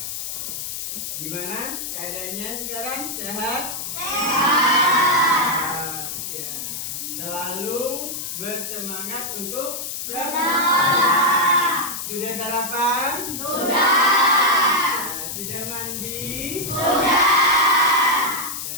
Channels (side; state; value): left; noise; hiss, 5 dB below the sound